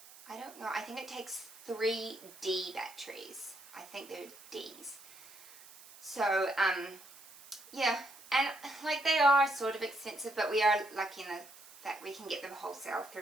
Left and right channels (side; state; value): right; noise; hiss, 20 dB below the sound